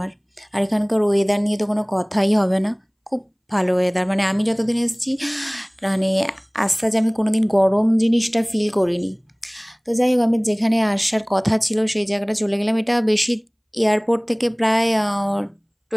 আর এখানকার ওয়েদার নিয়ে তো কোনো কথাই হবে না, খুব ভালো ওয়েদার। মানে আমি যতদিন এসেছি, মানে আজ আমি কোনো দিন গরম জিনিসটা ফিল করিনি। তো যাই হোক, আমি যেখানে আসার কথা ছিল সেই জায়গাটা চলে গেলাম। এটা বেশি এয়ারপোর্ট থেকে প্রায়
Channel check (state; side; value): identical; both; correlation 1.00